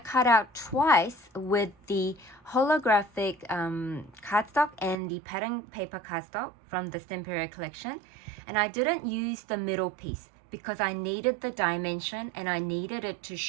out twice with the holographic cardstock and the pattern paper cardstock from the Stamperia collection. And I didn't use the middle piece because I needed the dimension and I needed it to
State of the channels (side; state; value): left; drops out; at 5.0 s